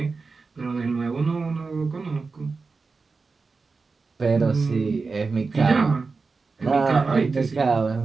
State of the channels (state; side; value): quieter; left; 4.3 dB